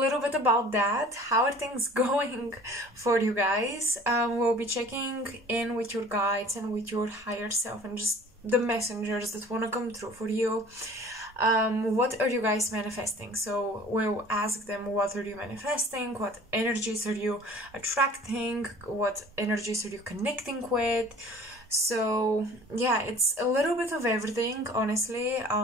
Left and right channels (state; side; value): normal; both; correlation 0.47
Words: bit about that. How are things going for you guys? We'll be checking in with your guides and with your higher self and just the messengers that want to come through for you. What are you guys manifesting? So we'll ask them, what are you manifesting? What energies are you attracting? What energies are you connecting with? So yeah, it's a little bit of everything, honestly.